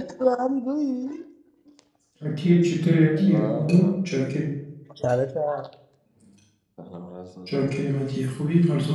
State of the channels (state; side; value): identical; both; correlation 1.00